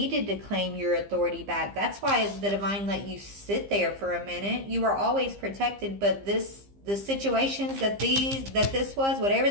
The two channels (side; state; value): left; late; 15 ms